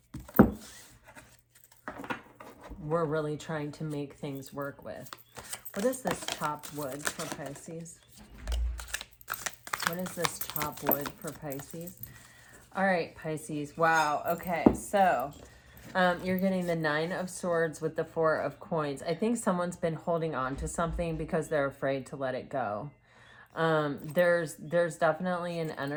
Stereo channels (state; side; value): identical; both; correlation 1.00